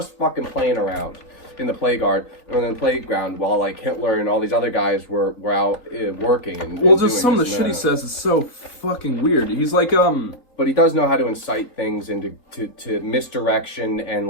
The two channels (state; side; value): late; right; 4.1 ms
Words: fucking playing around in the playground while, like, Hitler and all these other guys were out working and just some of the shit he says is so fucking weird. He's like But he does know how to incite things into to misdirection and,